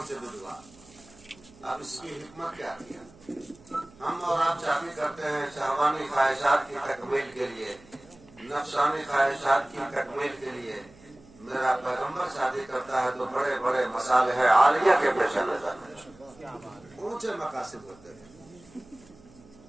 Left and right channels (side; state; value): right; noise; hum, 25 dB below the sound